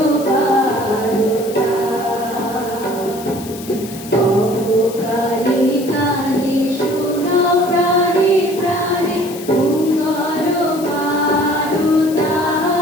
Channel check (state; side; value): noise; left; hiss, 15 dB below the sound